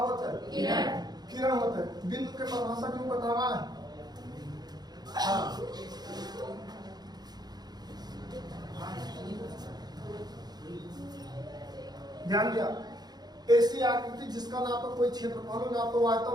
था किरण होता है। बिंदु के परिभाषा क्यों बतावा है? हाँ ध्यान दिया। ऐसी आकृति जिसका ना तो कोई क्षेत्रफल ना तो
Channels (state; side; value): late; left; 0.19 ms